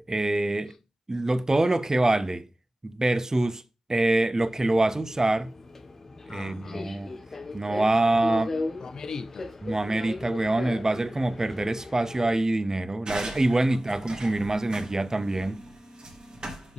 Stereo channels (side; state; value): both; normal; correlation 0.97